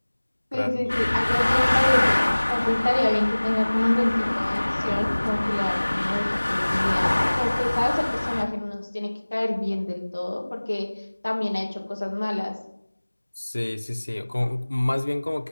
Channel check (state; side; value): inverted; both; correlation -1.00